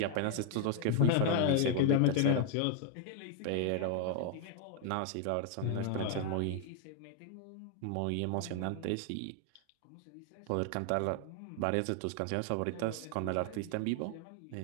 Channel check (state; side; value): different; both; correlation 0.00